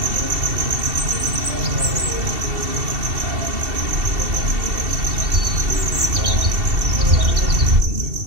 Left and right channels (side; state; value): left; late; 2.7 ms